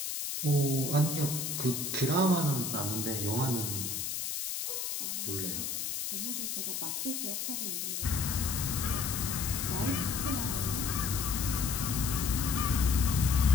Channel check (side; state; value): left; noise; hiss, 3 dB below the sound